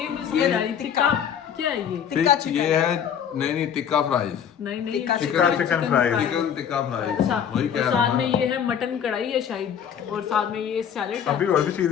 मुझे समझ आ रही। टिक्का क्या है ये? टिक्का फिर चिकन। ये है नहीं टिक्का फ्राइज। नहीं नहीं, tikka chicken fry. Chicken tikka fries अच्छा, वही और कह रहा साथ हूँ में मैं। ये है मटन कढ़ाई है शायद, और साथ में ये सैलेड है। अभी और भी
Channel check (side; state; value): right; quieter; 8.5 dB